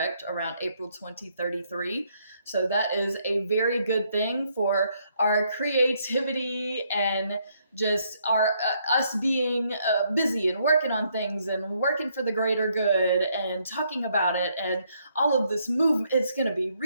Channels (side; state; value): both; inverted; correlation -0.72